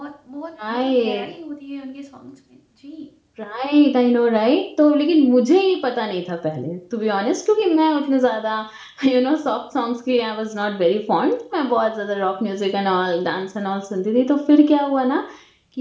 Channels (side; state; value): both; identical; correlation 1.00